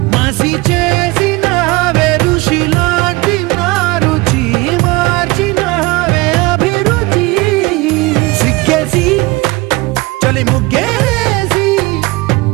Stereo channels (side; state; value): left; quieter; 22.4 dB